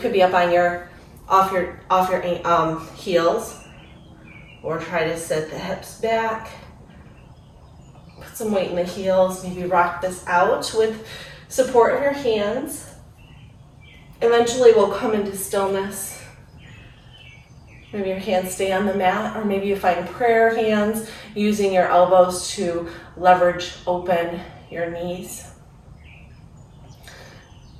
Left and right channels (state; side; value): identical; both; correlation 1.00